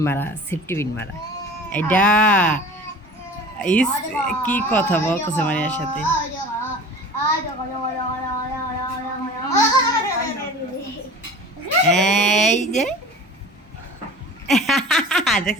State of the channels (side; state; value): both; normal; correlation 0.40